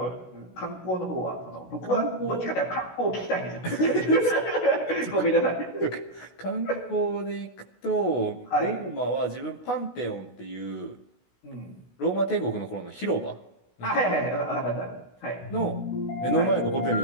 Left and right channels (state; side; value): late; right; 16 ms